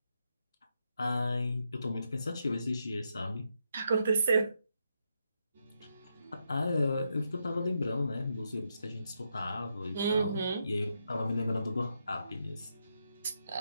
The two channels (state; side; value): inverted; both; correlation -0.82